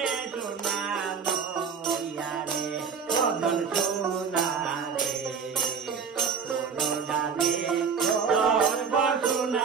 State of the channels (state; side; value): quieter; left; 6.0 dB